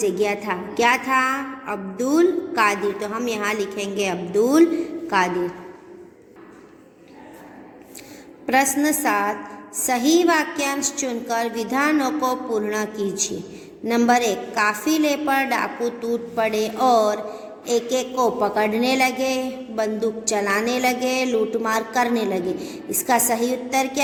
था। क्या था? अब्दुल कादिर, तो हम यहाँ लिखेंगे अब्दुल कादिर। प्रश्न 7 सही वाक्यांश चुनकर विधानों को पूर्ण कीजिए। नंबर 1 काफिले पर डाकू टूट पड़े और एक एक को पकड़ने लगे, बंदूक चलाने लगे, लूटमार करने लगे। इसका सही उत्तर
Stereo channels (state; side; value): identical; both; correlation 1.00